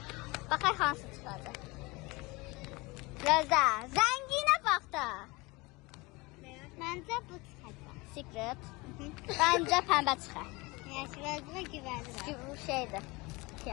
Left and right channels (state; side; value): quieter; right; 24.0 dB